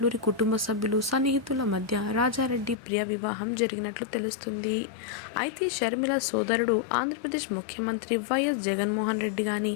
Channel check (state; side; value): drops out; right; at 2.8 s